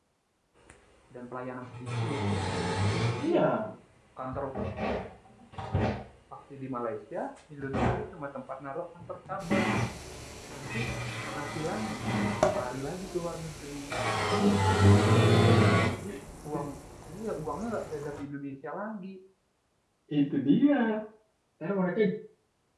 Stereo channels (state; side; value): identical; both; correlation 1.00